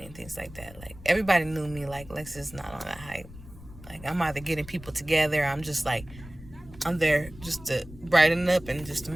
and things like that. Like, everybody knew me. Like, Lex not on that hype. Like, I'm either getting people together. I'm just like, I'm there just to brighten up and just to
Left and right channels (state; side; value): noise; left; rumble, 17 dB below the sound